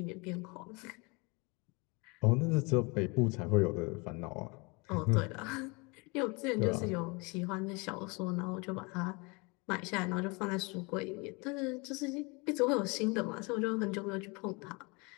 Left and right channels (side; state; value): right; quieter; 28.6 dB